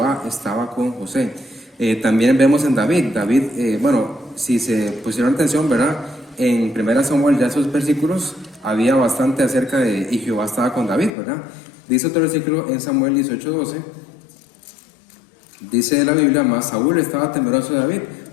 estaba con José. También vemos en David, bueno, si se pusieron atención, ¿verdad? En 1 Samuel, ya esos versículos, había bastante acerca de, y Jehová estaba con David, ¿verdad? Dice otro versículo en Samuel 18:12, dice la Biblia, mas Saúl estaba temeroso de David,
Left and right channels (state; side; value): drops out; right; at 11.1 s